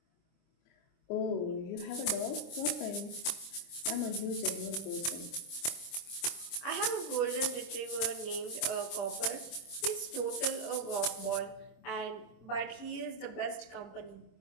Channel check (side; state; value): right; late; 25 ms